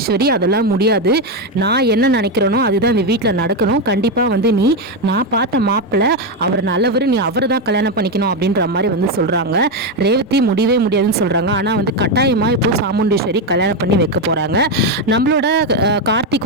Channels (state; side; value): normal; both; correlation 0.08